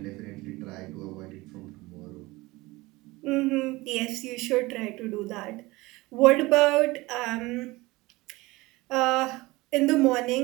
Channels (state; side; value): quieter; left; 21.2 dB